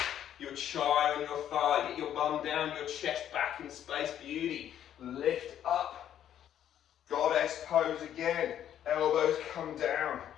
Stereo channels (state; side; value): quieter; right; 10.5 dB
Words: your chai on your thigh, get your bum down, your chest back in space, beauty. Lift up. Goddess pose again. Elbows come down.